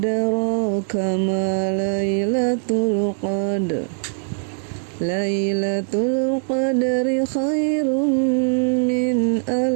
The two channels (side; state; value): left; silent; 63 dB below the other